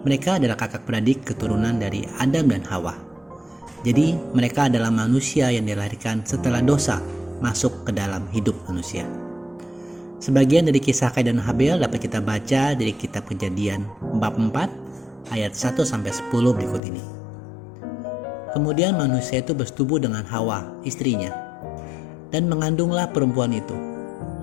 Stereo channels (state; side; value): drops out; right; at 16.8 s